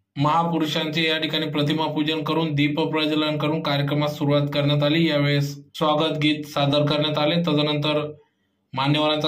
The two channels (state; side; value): identical; both; correlation 1.00